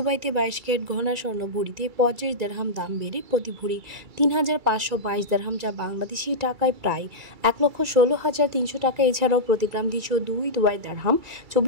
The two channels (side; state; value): left; late; 2.3 ms